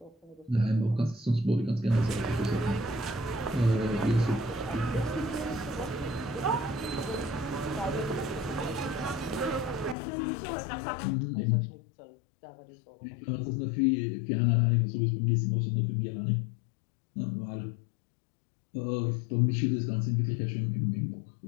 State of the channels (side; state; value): right; drops out; at 10.0 s